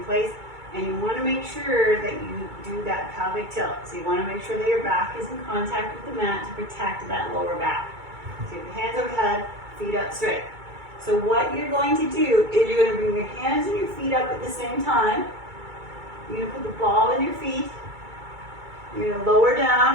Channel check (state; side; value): late; left; 2.3 ms